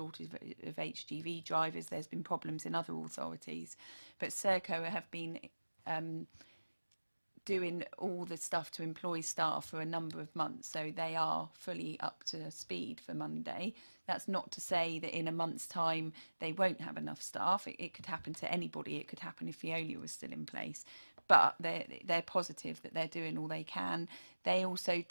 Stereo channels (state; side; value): inverted; both; correlation -1.00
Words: of HGV drivers. There's been problems in other authorities, but Serco have been doing all the stuff to employ staff for a number of months, so they are fully up to speed for Monday. That's not to say that in a month's time they won't have enough staff. It could happen to anybody. It could happen if Veolia was still in place, but they're positive that they're doing all they can. They also